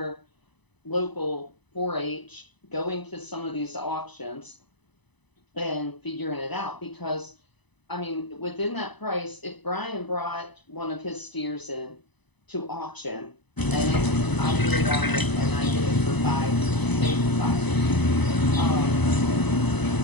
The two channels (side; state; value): right; late; 1.0 ms